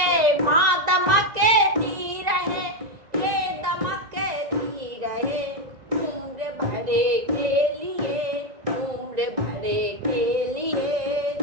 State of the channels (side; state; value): left; late; 1.9 ms